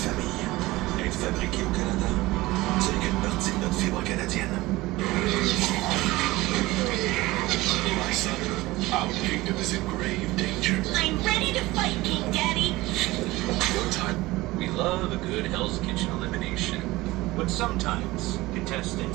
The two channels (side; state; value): left; quieter; 19.5 dB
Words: Être fabriqué au Canada, ce n'est qu'une partie de notre fibre canadienne. My son, our kingdom is in grave danger. I'm ready to fight, King Daddy. Your time. We love a good Hell's Kitchen elimination, but sometimes